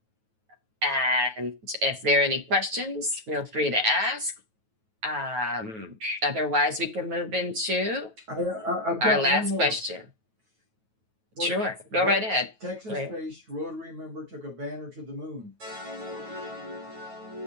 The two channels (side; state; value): left; late; 9.2 ms